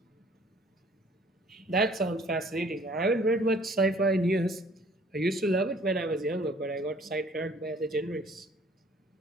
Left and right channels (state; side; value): normal; both; correlation 0.56